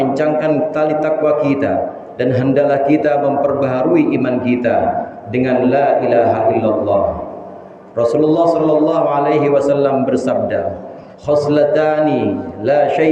tali takwa kita dan hendaklah kita memperbaharui iman kita dengan la ilaha illallah. Rasulullah sallallahu alaihi wasallam bersabda, khoslatani la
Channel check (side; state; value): both; identical; correlation 1.00